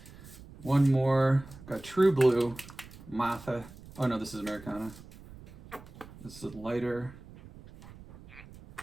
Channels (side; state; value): right; noise; rumble, 18 dB below the sound